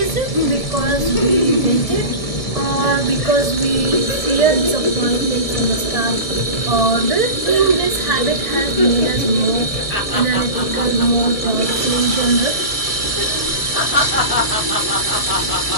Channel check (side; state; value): right; late; 1.7 ms